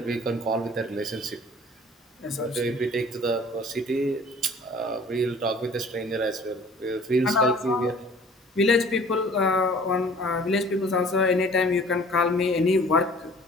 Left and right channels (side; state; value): both; normal; correlation 0.50